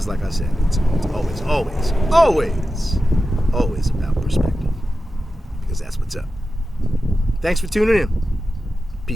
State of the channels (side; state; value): both; normal; correlation 0.92